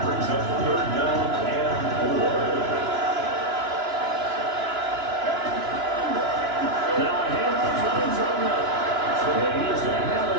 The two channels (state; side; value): late; left; 2.9 ms